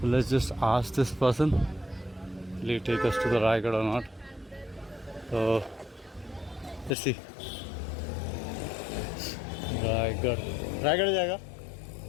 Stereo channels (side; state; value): right; drops out; at 7.0 s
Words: let's just ask this person, will he take us to the Raigad or not? So let's see. Raigad जाएगा.